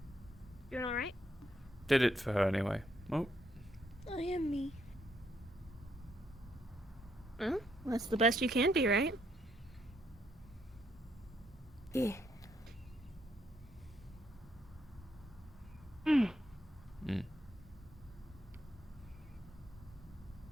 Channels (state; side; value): normal; both; correlation 0.75